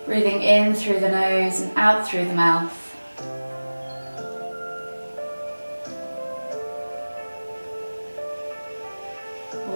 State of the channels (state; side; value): inverted; both; correlation -1.00